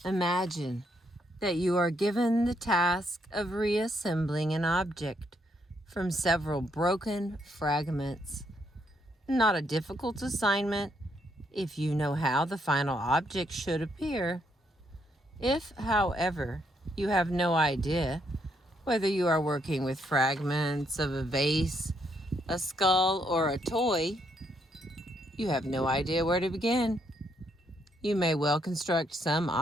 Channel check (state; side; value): normal; both; correlation 0.74